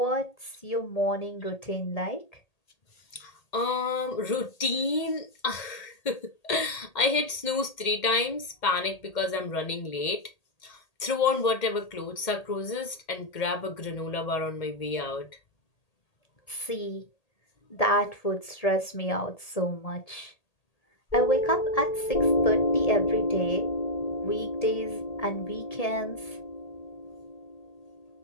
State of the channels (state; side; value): late; right; 1.8 ms